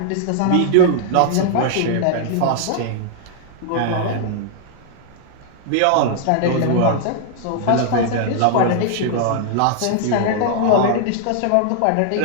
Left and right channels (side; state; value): both; different; correlation -0.01